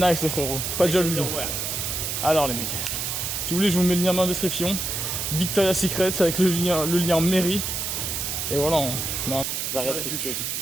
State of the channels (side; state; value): right; noise; hiss, 2 dB below the sound